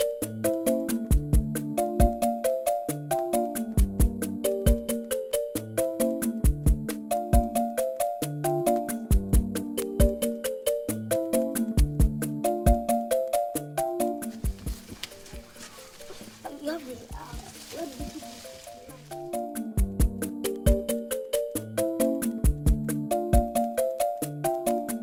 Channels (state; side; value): identical; both; correlation 1.00